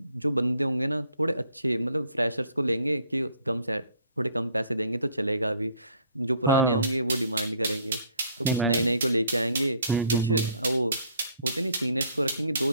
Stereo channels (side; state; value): both; inverted; correlation -0.61